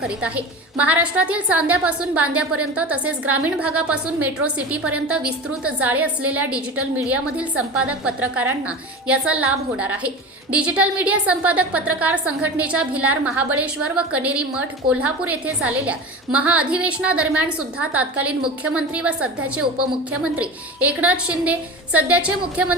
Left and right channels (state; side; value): normal; both; correlation 0.31